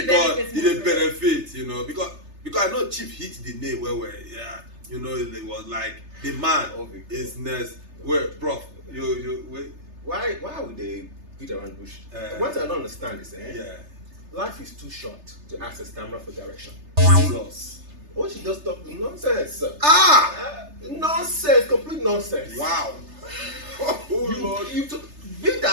benefits it more a for benefit, you know, because I know Chief hit the nail where yeah, you know, it was like the man is next. Well, prof, you wait. Why would they beat around the bush? What I don't understand is, Yeah. life is too short to ask a stammerer for direction. Jesus. What she just talk nonsense. Ah! Nonsense, complete nonsense. Wow. Oh Lord. You be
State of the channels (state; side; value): late; left; 3.3 ms